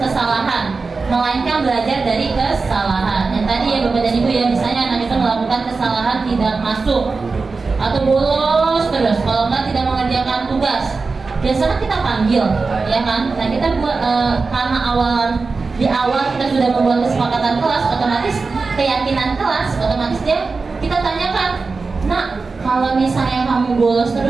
melainkan belajar dari kesalahan. Yang tadi ya Bapak dan Ibu ya, misalnya anak itu melakukan kesalahan tidak masuk atau bolos terus. Kalau nggak tidak mengerjakan tugas, biasanya kita panggil, ya kan? Nah kita buat karena di awal kita sudah membuat kesepakatan kelas, otomatis keyakinan kelas, otomatis kita tanyakan, nak, kalau misalnya kamu bolos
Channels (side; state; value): left; quieter; 4.2 dB